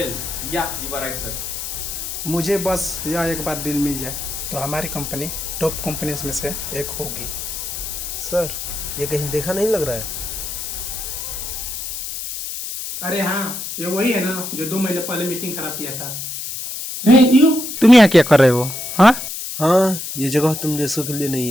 yeah you are right sir. मुझे बस यह एक बार डील मिल जाए तो हमारी कंपनी टॉप कंपनीज में से एक होगी। सर, ये कहीं देखा नहीं लग रहा है? अरे हाँ, ये वही है ना जो 2 महीने पहले मीटिंग खराब किया था। तुम यहाँ क्या कर रहे हो? हाँ, हाँ, ये जगह तुम जैसों के लिए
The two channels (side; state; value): left; noise; hiss, 6 dB below the sound